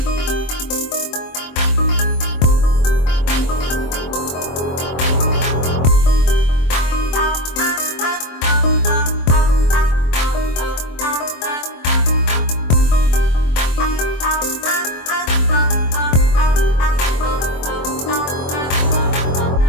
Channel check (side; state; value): right; late; 24 ms